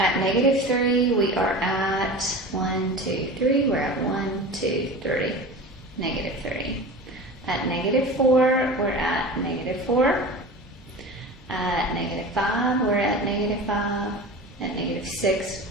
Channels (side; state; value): both; normal; correlation 0.33